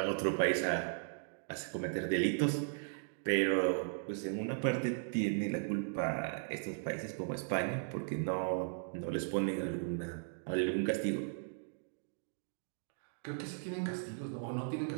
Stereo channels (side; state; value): left; silent; digital silence